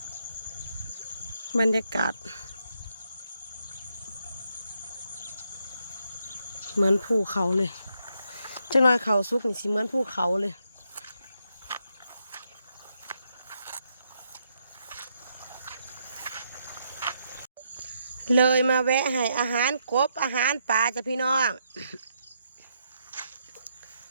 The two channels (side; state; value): both; inverted; correlation -0.77